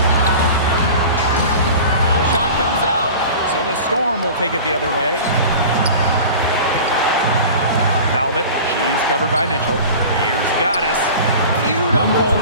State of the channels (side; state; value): both; inverted; correlation -0.37